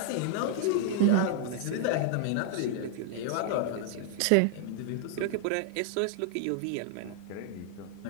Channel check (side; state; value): both; different; correlation 0.00